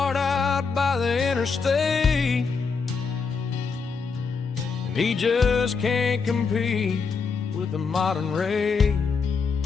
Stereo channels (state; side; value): quieter; right; 5.1 dB